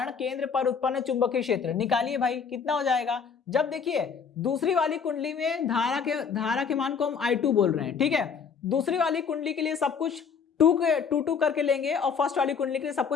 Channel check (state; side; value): quieter; right; 6.3 dB